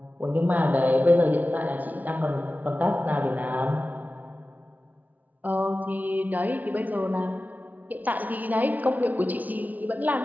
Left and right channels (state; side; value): late; left; 0.077 ms